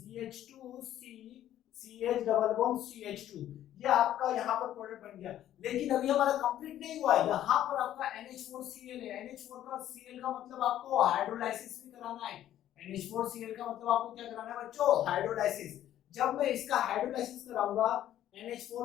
CH double bond CH2, ये आपका यहाँ पर प्रोडक्ट बन गया। लेकिन अभी हमारा कंप्लीट नहीं हुआ है, यहाँ पर आपका NH4Cl है। NH4 का Cl का मतलब आपको हाइड्रोलाइसिस भी कराना है। NH4Cl का मतलब आपको क्या कराना है बच्चों, हाइड्रोलाइसिस। जब मैं इसका हाइड्रोलाइसिस कराऊंगा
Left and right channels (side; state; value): right; quieter; 12.1 dB